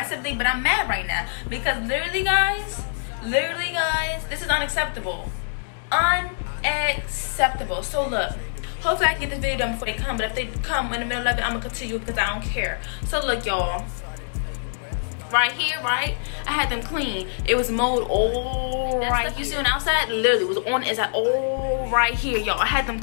but I'm mad right now because literally guys, this is unacceptable. Unacceptable. So look, hopefully I can get this video done before they come, but if they come in the middle of it, I'm gonna continue because I don't care. So look, y'all, right here, right, I had them clean. It was mowed all right. You see on the outside, literally was on the inside, all right here, y'all. I had them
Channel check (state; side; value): silent; right; 62 dB below the other